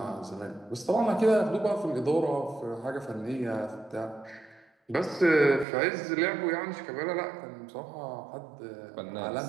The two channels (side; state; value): left; drops out; at 5.7 s